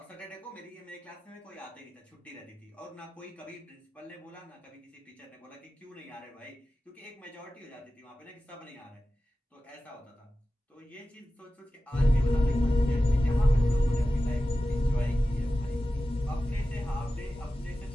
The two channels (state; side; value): normal; both; correlation 0.94